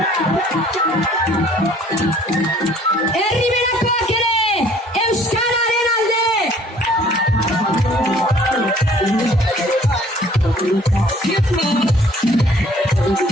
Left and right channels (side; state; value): both; normal; correlation 0.56